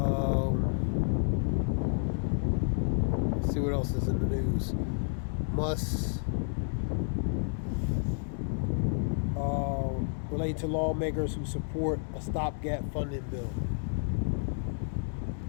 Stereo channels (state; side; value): silent; right; digital silence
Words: Let's see what else is in the news. Musk related to lawmakers who support a stopgap funding bill.